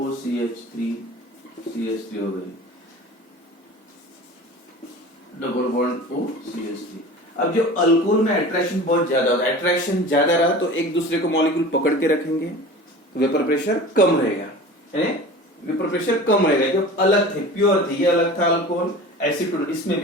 हो गई, डबल बॉन्ड OCH3। अब जो अल्कोहल में अट्रैक्शन बहुत ज्यादा होता है, अट्रैक्शन ज्यादा रहा तो एक दूसरे को मॉलिक्यूल पकड़ के रखेंगे, तो वेपर प्रेशर कम रहेगा, वेपर प्रेशर कम रहेगा। जो अलग थे, प्योर थे, ये अलग था अल्कोहल, एसीटोन, इसमें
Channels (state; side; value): normal; both; correlation 0.37